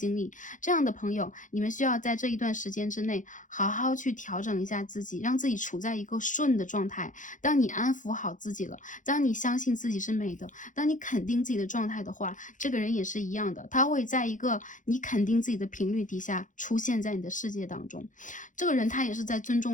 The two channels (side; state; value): right; late; 0.37 ms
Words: 历，这样的朋友，你们需要在这一段时间之内好好去调整一下自己，让自己处在一个顺的状态。当你安抚好自己了，当你相信自己是美的，当你肯定自己的状态的话，这个人也是一样的，他会在一个你肯定自己的频率底下出现在你的世界当中。这个人他也是在尊